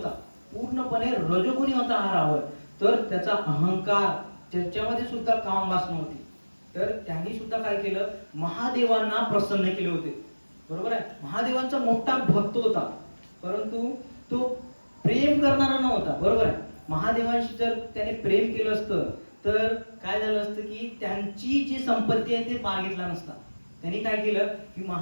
पूर्णपणे रजोगुणी होता हा रावण. तर त्याचा अहंकार, त्याच्यामध्ये सुद्धा काम वासना होती. तर त्यांनी सुद्धा काय केलं, महादेवांना प्रसन्न केले होते. बरोबर आहे, महादेवांचा मोठा भक्त होता, परंतु तो प्रेम करणारा नव्हता. बरोबर आहे, महादेवांशी जर त्याने प्रेम केलं असतं तर काय झालं असतं की त्यांची जी संपत्ती आहे ते मागितला नसता. त्यांनी काय केलं की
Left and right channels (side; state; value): both; inverted; correlation -1.00